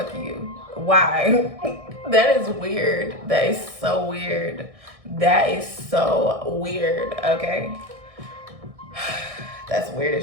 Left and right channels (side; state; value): left; late; 1.6 ms